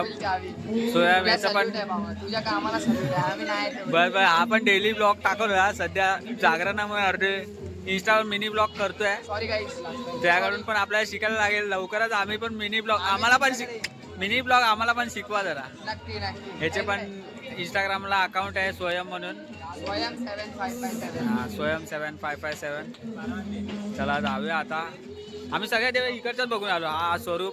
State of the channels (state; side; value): identical; both; correlation 1.00